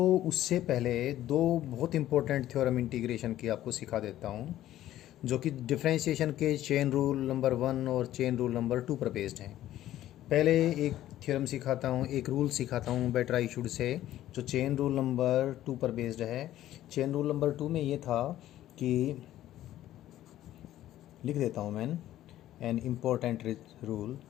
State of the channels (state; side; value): quieter; right; 13.4 dB